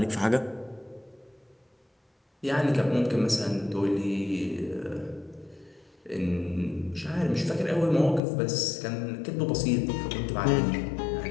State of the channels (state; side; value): drops out; right; at 8.2 s